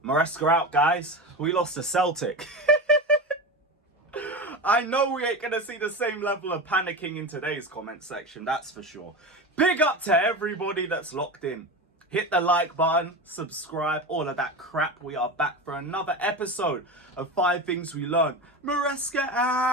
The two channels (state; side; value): normal; both; correlation 0.24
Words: Maresca out, guys. We lost to Celtic. I know we ain't going to see the same level of panicking in today's comment section, that's for sure. Big up to everybody that's locked in. Hit the like button, subscribe, all of that crap. We are back for another episode of 5 Things We Learned. Maresca